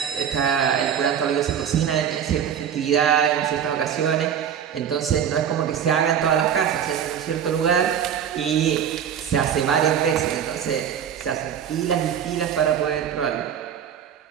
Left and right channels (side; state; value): left; quieter; 8.6 dB